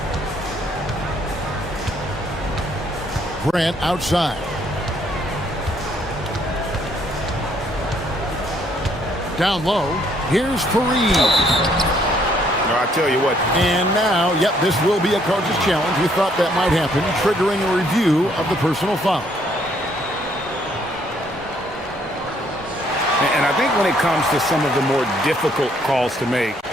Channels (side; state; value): both; normal; correlation 0.67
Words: Grant outside. Down low. Here's Fareed. No, I tell you what. And now, yep, this will be a coach's challenge. We thought that might happen, triggering a review of the personal foul. And I think when it comes to some of the more difficult calls to make,